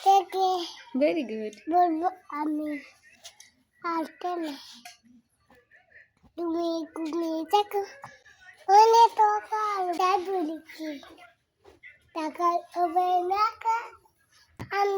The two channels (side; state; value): both; identical; correlation 1.00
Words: থেকে ভেরি গুড। বলবো আমি আর কেন তুমি ঘুমিয়ে থাকো সকাল বলি কি টাকার হবে না